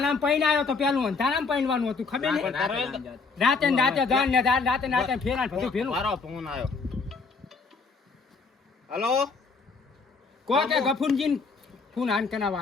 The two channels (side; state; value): right; quieter; 4.5 dB